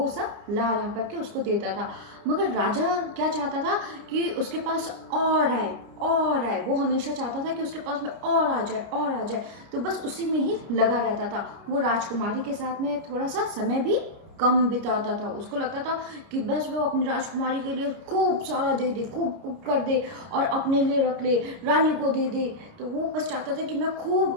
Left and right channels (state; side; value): late; left; 30 ms